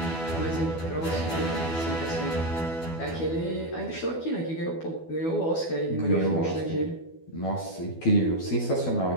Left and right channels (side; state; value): right; late; 12 ms